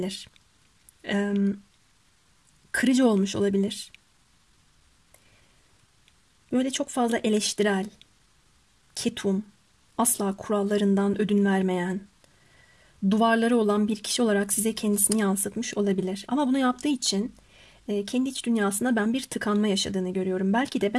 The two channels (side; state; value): both; identical; correlation 1.00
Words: Kırıcı olmuş olabilir. Böyle çok fazla eleştirel, ketum, asla kurallarından ödün vermeyen, duvarları olan bir kişi olarak size kendisini yansıtmış olabilir. Ama bunu yaptığı için kendi iç dünyasında ben bir tıkanma yaşadığını görüyorum. Belki de